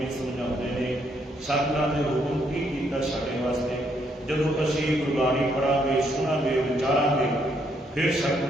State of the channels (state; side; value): normal; both; correlation 0.73